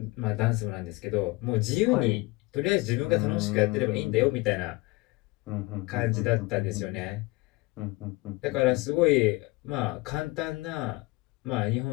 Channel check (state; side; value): quieter; right; 22.5 dB